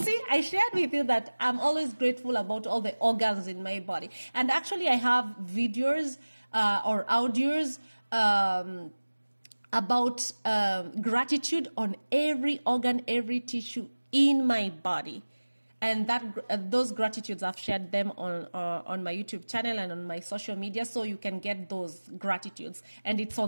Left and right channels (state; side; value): inverted; both; correlation -1.00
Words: I shared with you that I'm always grateful about all the organs in my body. And actually I have videos or audios about gratitude on every organ, every tissue in my body. And those gratitudes, I've shared them on my YouTube channel and on my social media, so you can get those gratitudes. And it's